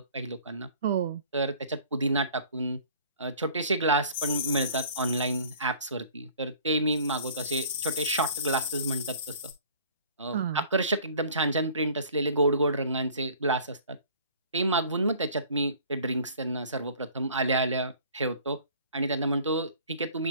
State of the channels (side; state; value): both; inverted; correlation -0.50